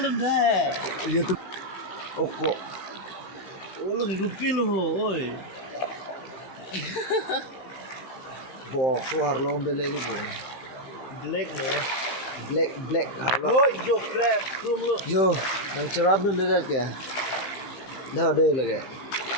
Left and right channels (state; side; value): late; right; 15 ms